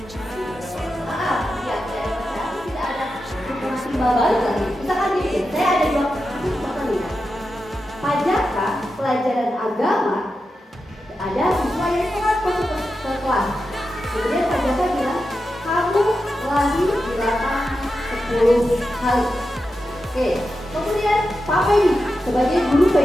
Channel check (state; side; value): normal; both; correlation 0.90